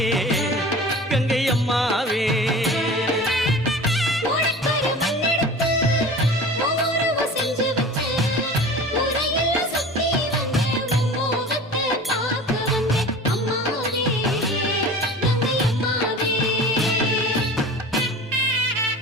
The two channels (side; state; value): both; normal; correlation 0.38